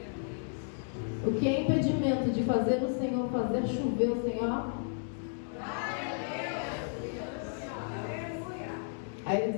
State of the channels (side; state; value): right; silent; digital silence